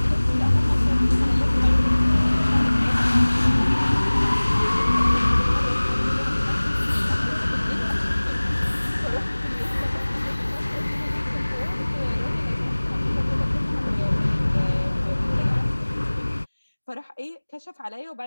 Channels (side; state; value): both; inverted; correlation -1.00